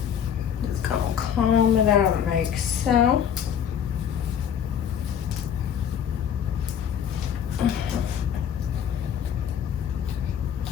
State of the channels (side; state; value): right; quieter; 8.7 dB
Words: Just gonna comb it out like so.